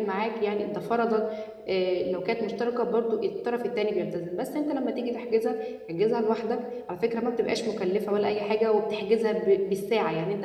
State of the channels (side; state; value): both; identical; correlation 1.00